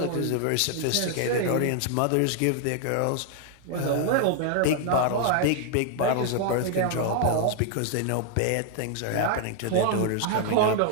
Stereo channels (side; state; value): both; different; correlation 0.00